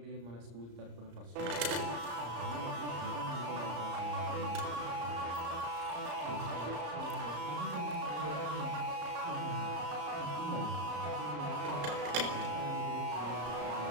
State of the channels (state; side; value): late; left; 34 ms